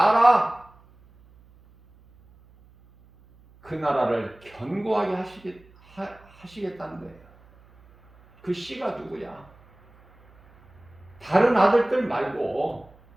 그 나라를 견고하게 하시겠다는 거예요. 그 씨가 누구야? 다른 아들들 말고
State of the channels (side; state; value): right; noise; hum, 27 dB below the sound